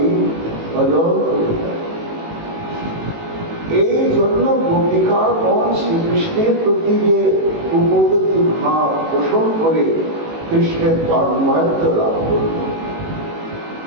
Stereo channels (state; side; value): late; left; 18 ms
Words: ভজন করে থাকি। এই জন্য গোপিকাগণ শ্রীকৃষ্ণের প্রতি যে উপগতি ভাব পোষণ করে কৃষ্ণের তন্ময়ত্ব লাভ করল,